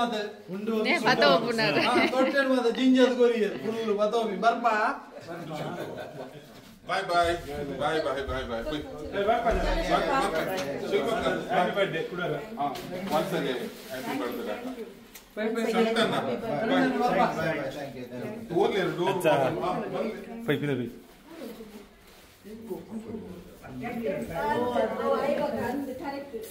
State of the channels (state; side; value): identical; both; correlation 1.00